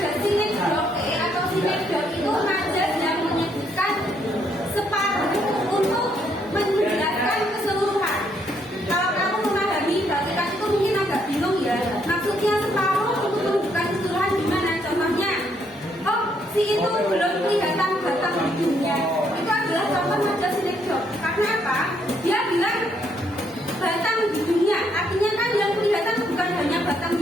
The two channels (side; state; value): both; normal; correlation 0.72